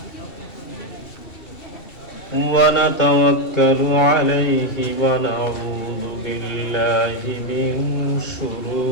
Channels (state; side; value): late; right; 2.7 ms